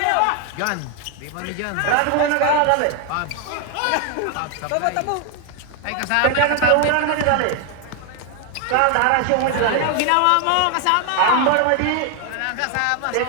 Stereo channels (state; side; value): different; both; correlation 0.00